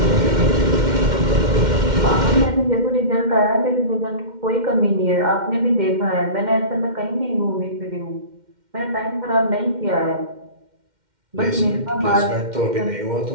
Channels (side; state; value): left; late; 2.1 ms